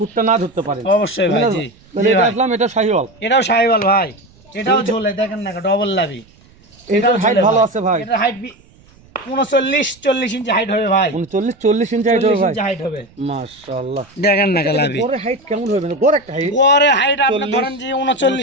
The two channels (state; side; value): noise; right; rumble, 28 dB below the sound